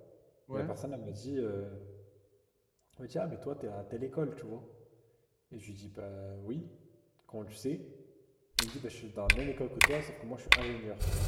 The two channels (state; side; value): identical; both; correlation 1.00